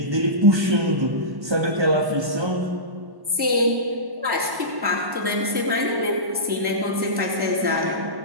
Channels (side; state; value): left; late; 1.1 ms